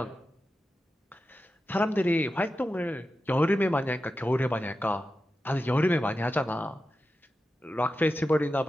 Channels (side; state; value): both; normal; correlation 0.91